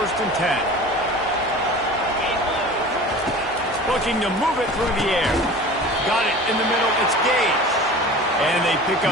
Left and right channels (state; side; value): normal; both; correlation 0.38